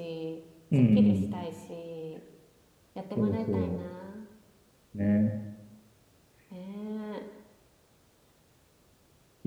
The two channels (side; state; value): both; identical; correlation 1.00